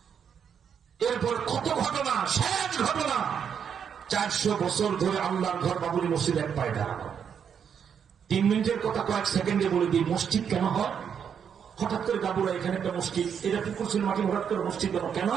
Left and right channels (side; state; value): left; quieter; 7.6 dB